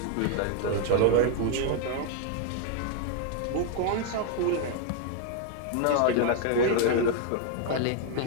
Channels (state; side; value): different; both; correlation 0.00